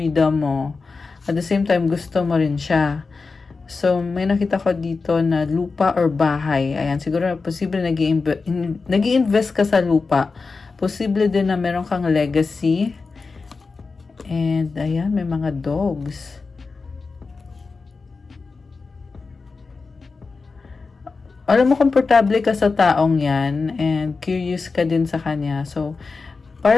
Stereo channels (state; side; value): quieter; right; 4.3 dB